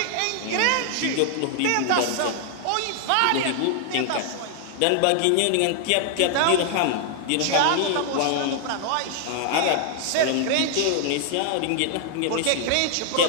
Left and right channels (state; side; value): different; both; correlation 0.00